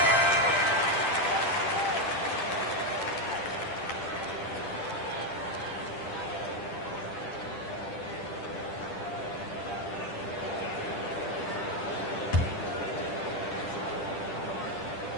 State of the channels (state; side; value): late; right; 10 ms